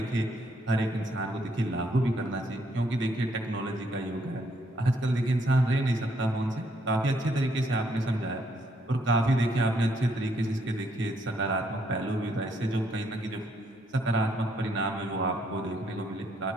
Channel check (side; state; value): both; normal; correlation 0.71